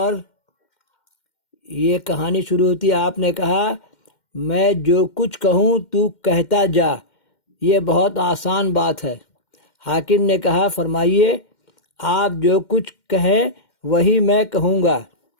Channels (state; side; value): late; right; 2.1 ms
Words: یہ کہانی شروع ہوتی ہے، آپ نے کہا میں جو کچھ کہوں تو کہتا جا، یہ بہت آسان بات ہے۔ حاکم نے کہا فرمائیے، آپ جو کچھ کہیں وہی میں کہوں گا۔